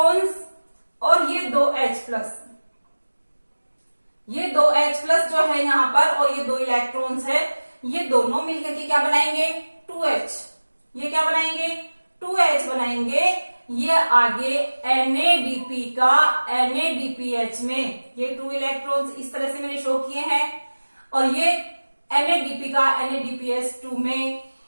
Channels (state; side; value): inverted; both; correlation -1.00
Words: और ये 2H+, ये 2H+ जो है यहाँ पर और ये 2 इलेक्ट्रॉन्स है, ये दोनों मिलकर के क्या बनाएंगे, 2H। ये क्या बनाएंगे, 2H बनाएंगे। ये आगे NADP का NADPH में ये 2 इलेक्ट्रॉन्स इस तरह से मैंने शो किए हैं और ये NADP का NADPH2 में